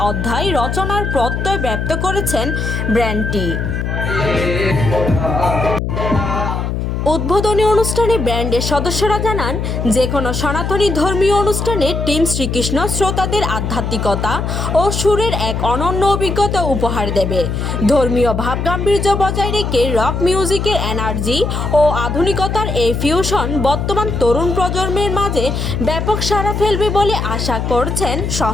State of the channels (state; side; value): noise; left; hum, 2 dB below the sound